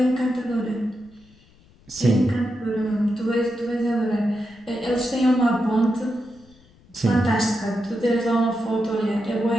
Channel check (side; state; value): left; noise; rumble, 28 dB below the sound